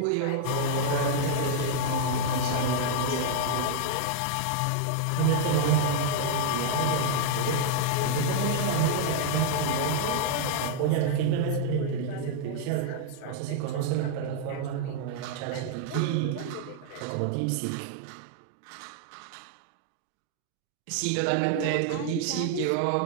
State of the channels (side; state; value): both; different; correlation -0.01